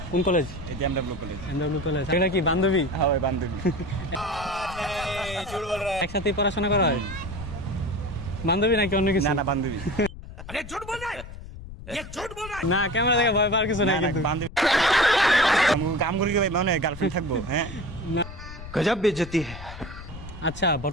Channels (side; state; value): left; noise; rumble, 13 dB below the sound